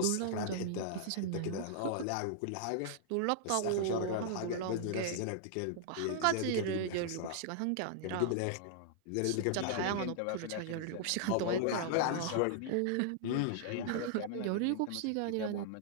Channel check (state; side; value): different; both; correlation -0.01